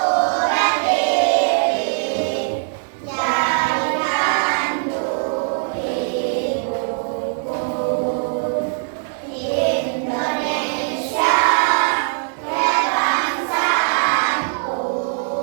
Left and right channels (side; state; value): left; silent; 63 dB below the other